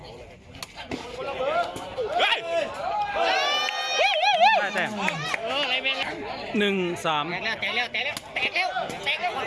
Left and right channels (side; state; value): both; identical; correlation 1.00